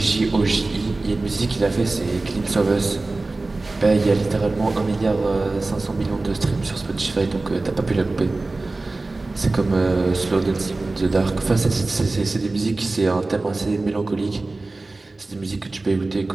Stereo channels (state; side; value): quieter; left; 3.2 dB